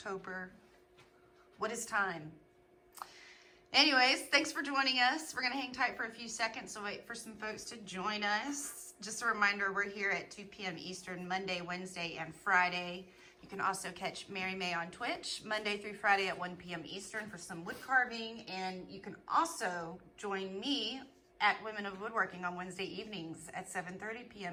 What is time? Anyways, thanks for joining us. We're going to hang tight for a few seconds and wait for some folks to join us. Just a reminder, we're here at 2 p.m. Eastern, Monday, Wednesday, and Friday. You can also catch Mary May on Twitch, Monday through Friday at 1 p.m. Eastern for some wood carving. And you can also join me at Women of Woodworking on Wednesday evenings at 7:30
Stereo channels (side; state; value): both; identical; correlation 1.00